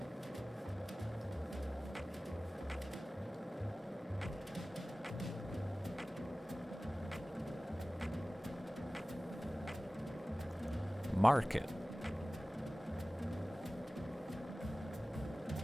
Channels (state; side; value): normal; both; correlation 0.97